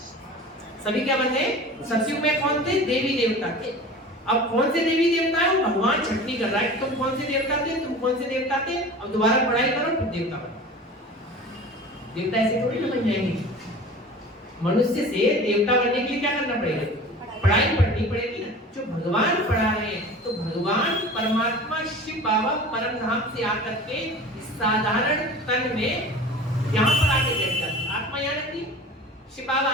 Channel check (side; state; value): both; normal; correlation 0.38